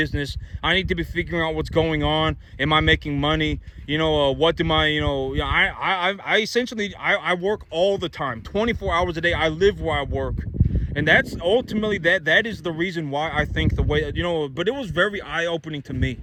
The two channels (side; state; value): both; identical; correlation 1.00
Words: I need to be figuring out what's going on. Am I making money? What do my, I essentially, I work all the time, 24 hours a day. I live where I work. And that's ultimately, that is the reason why I think the way, but it was very eye-opening to me.